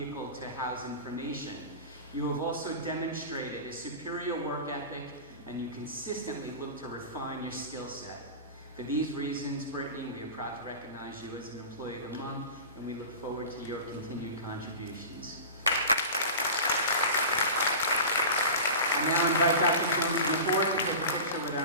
to house information. You have also demonstrated a superior work ethic, and you consistently look to refine your skill set. For these reasons, Brittany, we are proud to recognize you as an Employee of the Month, and we look forward to your continued contributions. I now invite Dr. Jones to the board to take a picture with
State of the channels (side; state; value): both; inverted; correlation -0.32